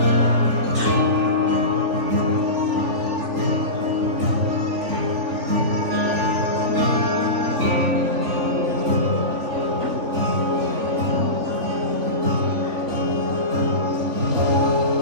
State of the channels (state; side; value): late; left; 3.4 ms